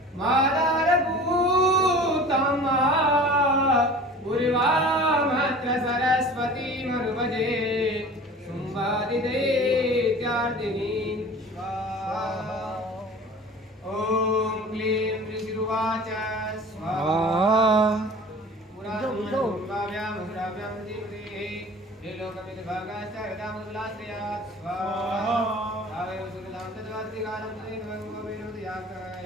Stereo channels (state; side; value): normal; both; correlation 0.42